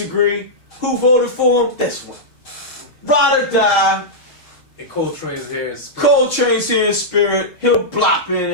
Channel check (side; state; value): right; late; 6.4 ms